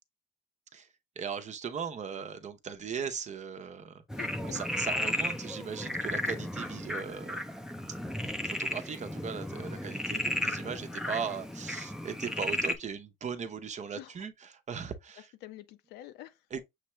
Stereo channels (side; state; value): both; normal; correlation 0.56